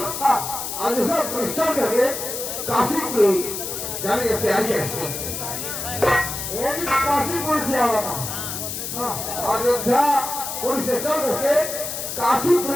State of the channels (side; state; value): left; noise; hiss, 5 dB below the sound